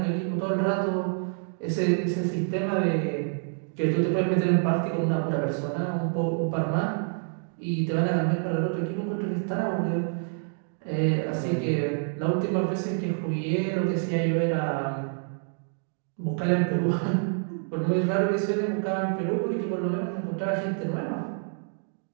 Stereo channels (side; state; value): left; silent; 60 dB below the other